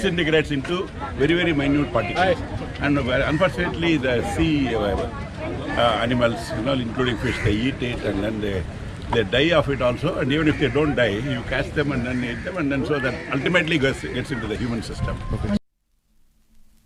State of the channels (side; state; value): both; identical; correlation 1.00